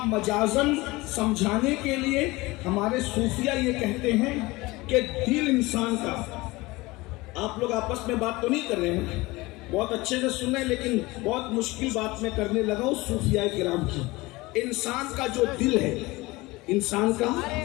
مجازن سمجھانے کے لیے ہمارے صوفیہ یہ کہتے ہیں کہ دل انسان کا، آپ لوگ آپس میں بات تو نہیں کر رہے ہیں، بہت اچھے سے سن رہے ہیں، لیکن بہت مشکل بات میں کرنے لگا ہوں صوفیاء کرام کی۔ انسان کا جو دل ہے، انسان کا،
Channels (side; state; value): right; quieter; 21.6 dB